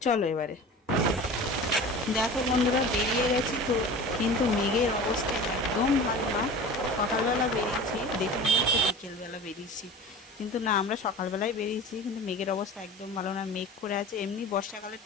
চলো এবারে দেখো বন্ধুরা, বেরিয়ে গেছি। তো কিন্তু মেঘের অবস্থা একদম ভালো না। সকালবেলা বেরিয়েছি, দেখে মনে হচ্ছে বিকেলবেলা বেরিয়েছি, কিন্তু না, আমরা সকালবেলায় বেরিয়েছি। কিন্তু মেঘের অবস্থা একদম ভালো না, মেঘ করে আছে। এমনি বর্ষাকালের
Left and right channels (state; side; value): normal; both; correlation 0.36